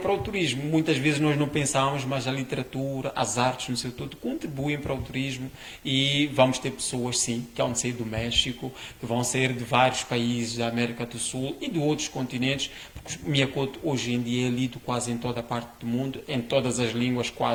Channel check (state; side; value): identical; both; correlation 1.00